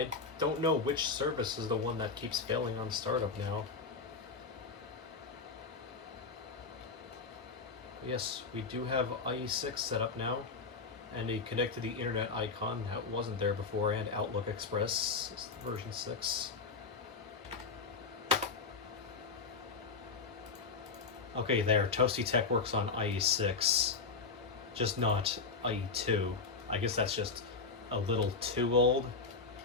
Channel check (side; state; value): right; quieter; 4.6 dB